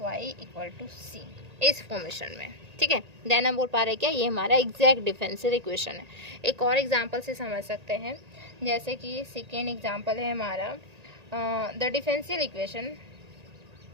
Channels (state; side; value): late; left; 1.8 ms